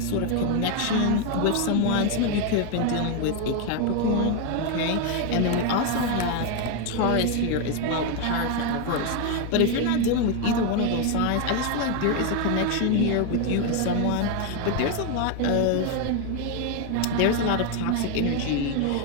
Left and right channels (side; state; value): both; different; correlation 0.01